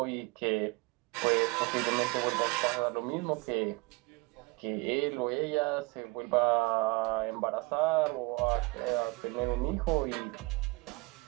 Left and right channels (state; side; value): quieter; left; 25.7 dB